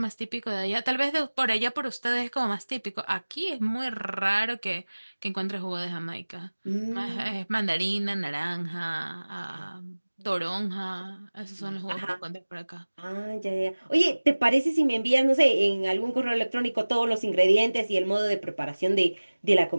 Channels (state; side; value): inverted; both; correlation -1.00